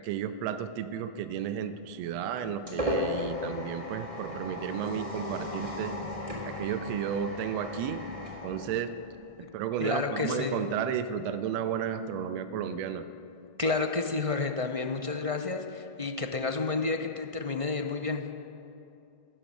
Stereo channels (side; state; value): left; late; 1.6 ms